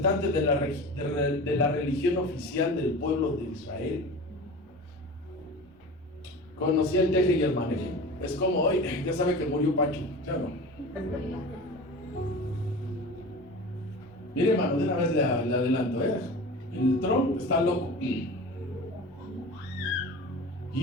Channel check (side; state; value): both; normal; correlation 0.34